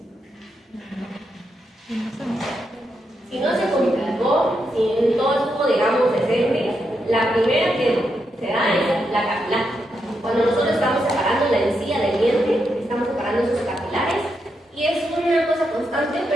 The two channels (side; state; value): both; normal; correlation 0.83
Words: Si no se complicó, si todo estuvo, digamos, decente, la primera que se da es la capilar. Cuando nosotros estamos separando la encía del diente, estamos separando sus capilares y es una cosa constante,